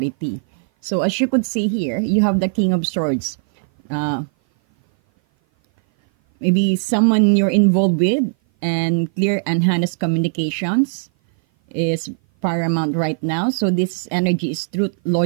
So as you could see here, you have the King of Swords. Uh, Maybe someone you're involved with, and clear and honest communications is paramount right now. So this energy is truth,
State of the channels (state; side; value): silent; left; 57 dB below the other